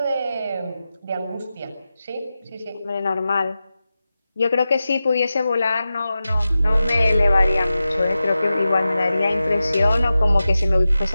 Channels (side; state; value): both; inverted; correlation -0.93